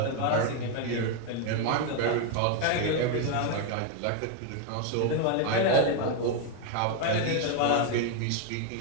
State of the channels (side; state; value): both; different; correlation 0.01